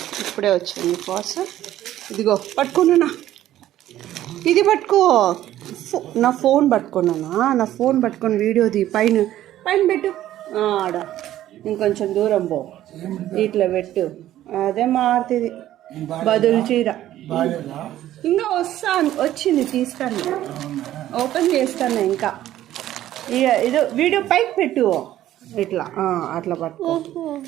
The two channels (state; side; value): quieter; left; 13.2 dB